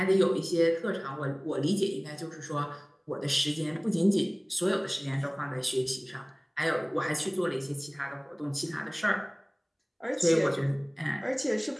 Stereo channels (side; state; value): both; identical; correlation 1.00